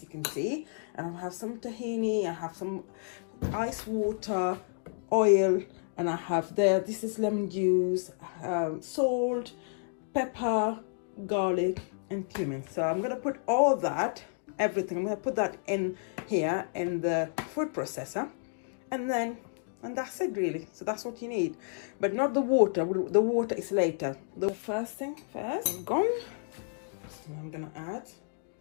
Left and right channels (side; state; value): right; silent; digital silence